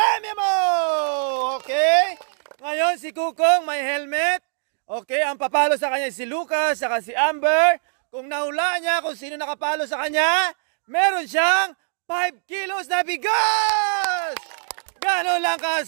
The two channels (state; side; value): silent; left; digital silence